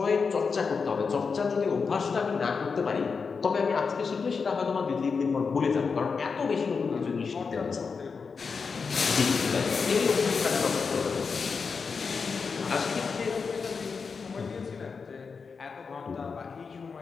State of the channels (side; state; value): right; quieter; 5.2 dB